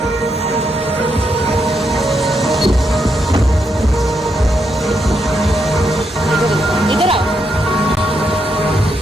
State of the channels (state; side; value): normal; both; correlation 0.80